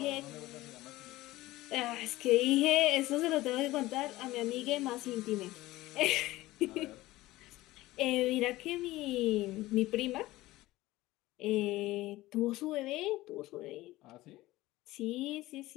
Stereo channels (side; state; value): right; quieter; 17.8 dB